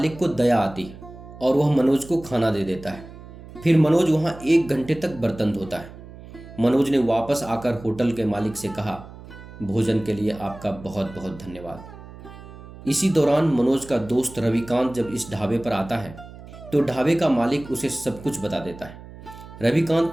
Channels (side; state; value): right; noise; hum, 17 dB below the sound